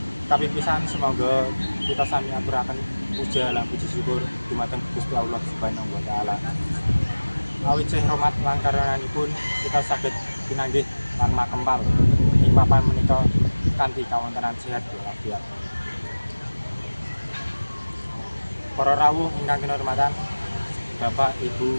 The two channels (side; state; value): both; inverted; correlation -1.00